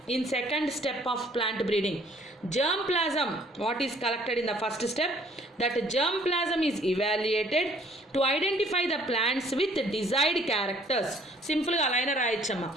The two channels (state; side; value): normal; both; correlation 0.59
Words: in second step of plant breeding? Germplasm, what is collected in the first step, that germplasm is evaluated to identify the plants with desired characters. సింపుల్గా అలానే రాయొచ్చమ్మా.